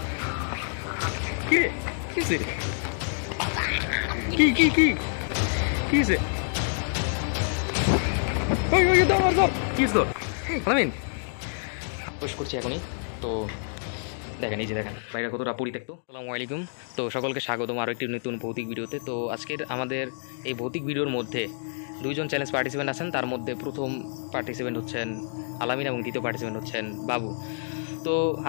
কি রে? কি হয়েছে? কি কি কি কি হয়েছে? ওই ওই ধর ধর। কি হয়েছে তোর? আলামিন প্রবেশ করছি এখনই। তো দেখেন, এই যে দেখেন বাইরে কতটা পরিত্যক্ত। আসসালামু আলাইকুম। তো সকলকে স্বাগতম আরও একটি নতুন ভৌতিক ভিডিওতে। তো আজকের আমাদের এই ভৌতিক ভিডিওর মধ্যে দুইজন চ্যালেঞ্জ পার্টিসিপেন্ট আছেন। তার মধ্যে প্রথম পার্টিসিপেন্ট হচ্ছেন আলামিন এবং দ্বিতীয় পার্টিসিপেন্ট হচ্ছেন বাবু। তো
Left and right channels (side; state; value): right; silent; digital silence